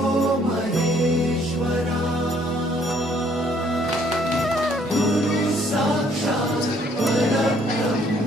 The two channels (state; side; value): normal; both; correlation 0.64